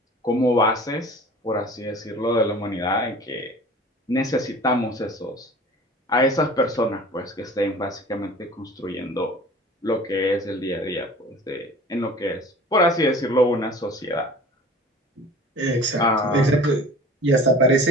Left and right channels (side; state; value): both; normal; correlation 0.43